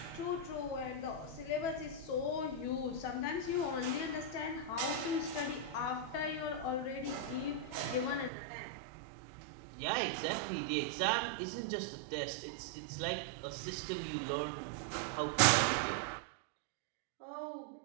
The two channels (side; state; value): left; drops out; at 8.3 s